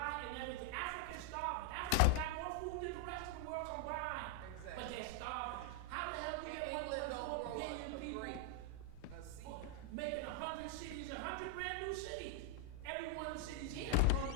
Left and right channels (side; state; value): both; different; correlation 0.00